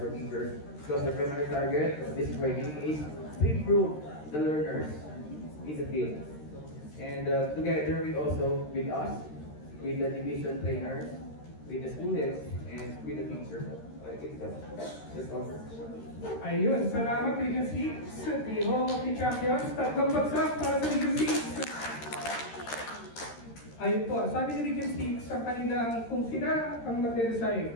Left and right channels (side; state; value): right; late; 13 ms